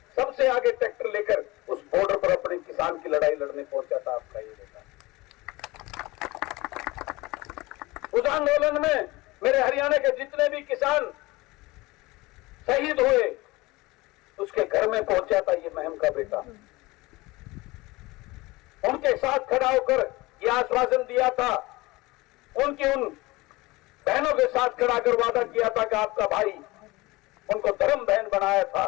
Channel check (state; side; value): quieter; right; 21.5 dB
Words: सबसे आगे ट्रैक्टर लेकर उस बॉर्डर पर अपने किसान की लड़ाई लड़ने पहुंचा था आपका ये बेटा। उस आंदोलन में मेरे हरियाणा के जितने भी किसान शहीद हुए, उसके घर में पहुंचा था ये महम का बेटा। उनके साथ खड़ा होकर यह आश्वासन दिया था, उनकी उन बहनों के साथ खड़ा कर वादा किया था कि आपका भाई, उनको धर्म बहन बनाया था।